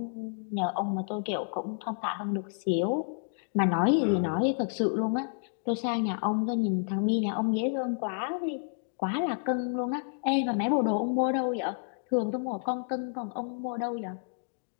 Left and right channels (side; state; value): right; silent; 58 dB below the other